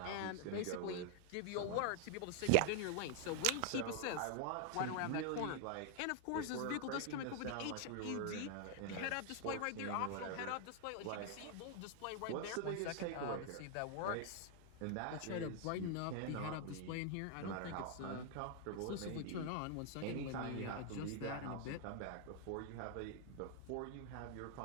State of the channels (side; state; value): both; different; correlation 0.00